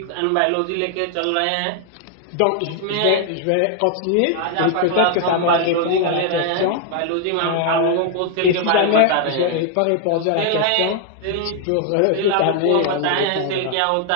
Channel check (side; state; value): both; different; correlation 0.00